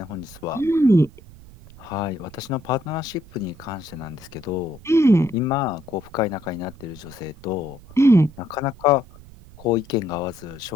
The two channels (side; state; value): right; noise; rumble, 20 dB below the sound